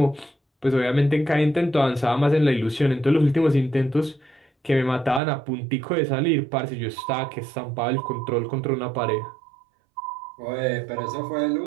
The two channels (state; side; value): drops out; left; at 5.2 s